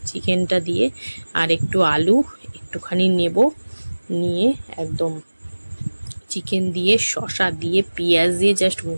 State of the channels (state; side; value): inverted; both; correlation -1.00